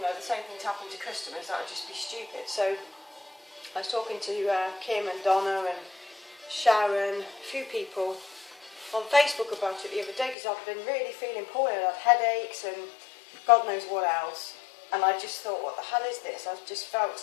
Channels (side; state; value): right; drops out; at 10.4 s